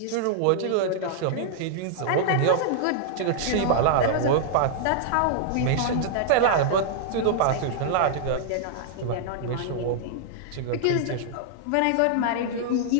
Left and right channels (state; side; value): different; both; correlation -0.01